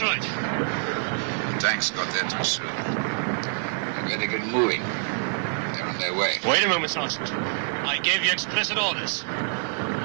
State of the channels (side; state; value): left; silent; 61 dB below the other